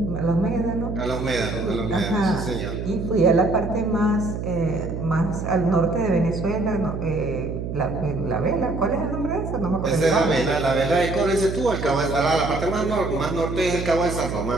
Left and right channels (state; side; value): noise; right; hum, 5 dB below the sound